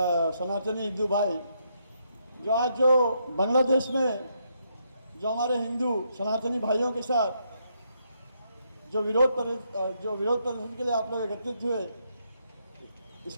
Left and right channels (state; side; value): inverted; both; correlation -0.76